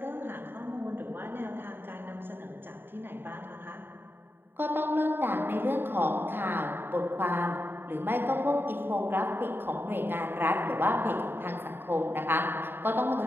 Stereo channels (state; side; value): late; left; 0.10 ms